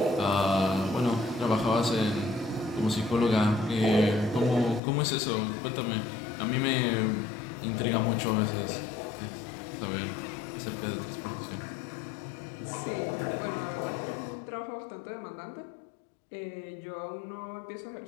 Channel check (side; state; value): right; drops out; at 4.8 s